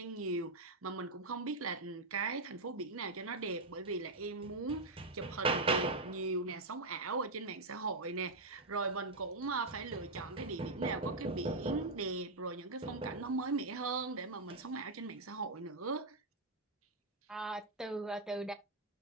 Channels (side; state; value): left; quieter; 3.0 dB